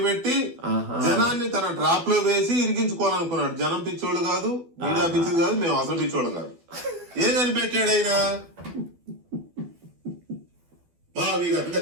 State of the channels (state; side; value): late; left; 12 ms